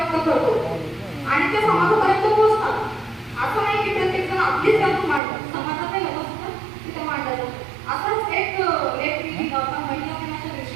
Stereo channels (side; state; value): left; drops out; at 5.2 s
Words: करतो आणि ते समाजापर्यंत पोहोचतात. असं नाही की प्रत्येक जण आपलीच त्यातून मांडतात, समाजात हे होत असतं तिथे मांडलं जातं. असाच एक लेख मी लिहिला होता महिला दिनाच्या